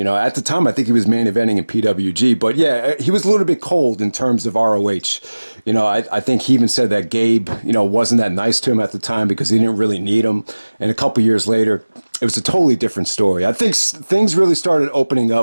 know, at the time, I think he was main eventing in PWG. But yeah, he was a little bit cold in terms of ROH. You know, I think he even said that Gabe, you know, wasn't that nice to him at the time because he didn't really need him. And a couple years later, it was a totally different story. I think things really started opening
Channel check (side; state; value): both; inverted; correlation -1.00